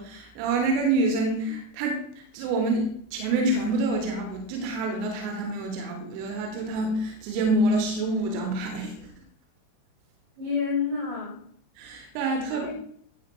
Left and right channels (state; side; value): late; left; 37 ms